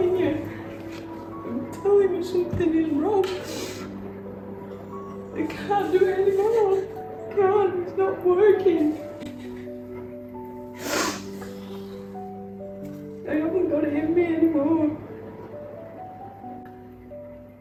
you. I'm telling you, something is wrong. I can't do it anymore. I can't, it's not working. I haven't got it in me anymore.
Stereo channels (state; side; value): identical; both; correlation 1.00